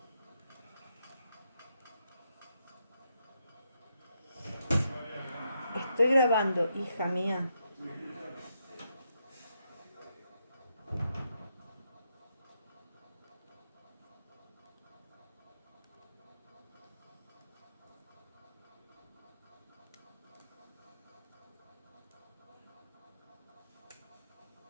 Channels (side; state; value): both; inverted; correlation -0.81